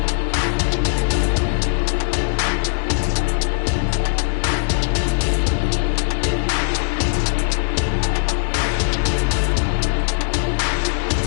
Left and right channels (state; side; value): silent; right; digital silence